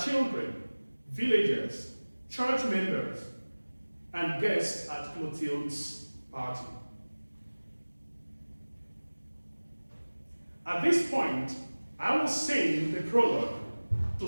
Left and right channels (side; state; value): both; inverted; correlation -1.00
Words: villagers, church members, and guests at Clothilde's party. At this point, I will sing the prologue